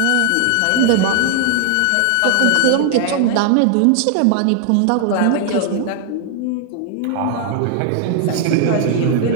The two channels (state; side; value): different; both; correlation 0.00